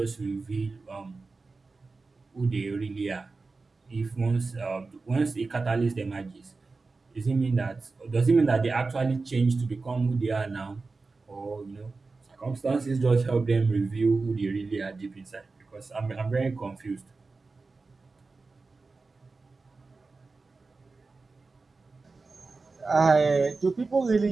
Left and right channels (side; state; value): left; quieter; 3.9 dB